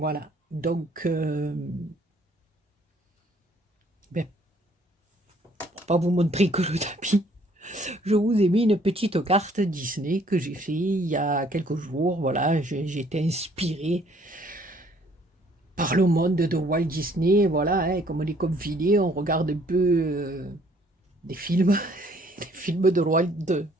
Donc, pour pas vous montrer que le tapis, je vous ai mis une petite carte Disney que j'ai fait il y a quelques jours. Voilà, j'ai été inspirée par le monde de Walt Disney. Voilà, hein, comme on est confiné, on regarde un peu des films, des films de Walt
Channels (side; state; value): both; normal; correlation 0.62